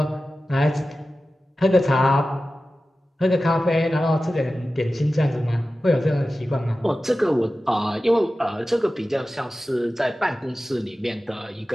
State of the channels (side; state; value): both; normal; correlation 0.94